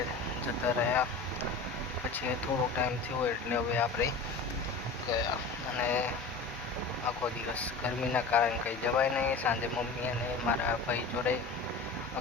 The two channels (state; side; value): quieter; right; 4.0 dB